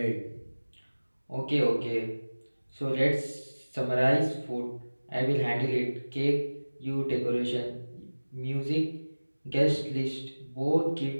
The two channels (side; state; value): both; inverted; correlation -1.00